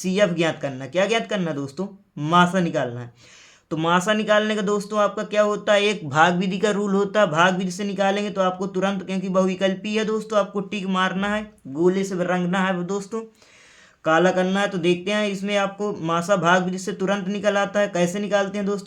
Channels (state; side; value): identical; both; correlation 1.00